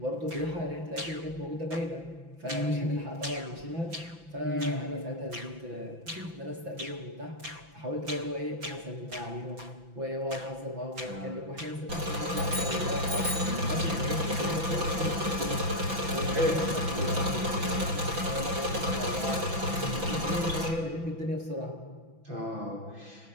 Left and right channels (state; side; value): late; left; 6.0 ms